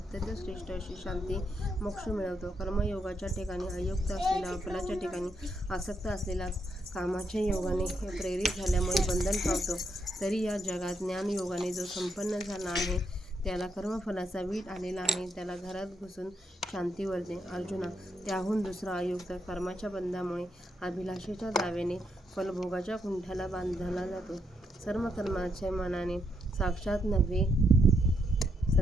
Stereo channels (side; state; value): both; normal; correlation 0.78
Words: श्रेष्ठ अशी शांती मोक्ष मिळवतो. कर्मयोगाच्या ठिकाणी अयुक्त असलेला, फलाच्या ठिकाणी आसक्त असलेला कामाच्या योगाने प्रेरित झाल्यामुळे बंधन पावतो. तरी या जगात ज्ञानयोगाने जो संपन्न झाला आहे त्याला कर्मफलाचा वीट आलेला आहे. त्याला घरात घुसून शांती वरते. अर्जुना, त्याहून दुसरा अयुक्त कर्माच्या बंधामुळे अभिलाषेच्या दाव्याने फलभोगाच्या कुंठाला बांधला जातो. सर्व कर्माच्या मनाने साक्षात नव्हे